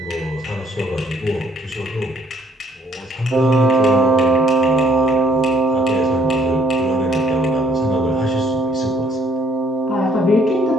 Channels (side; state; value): both; normal; correlation 0.63